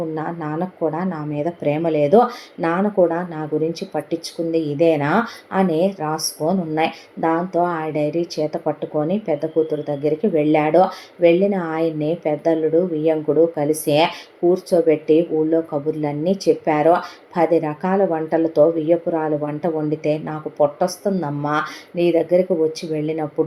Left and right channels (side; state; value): both; identical; correlation 1.00